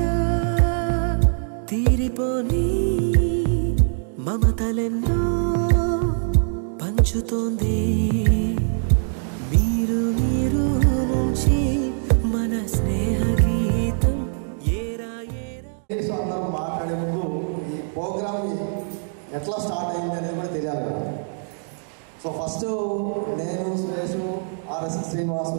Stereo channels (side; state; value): left; silent; digital silence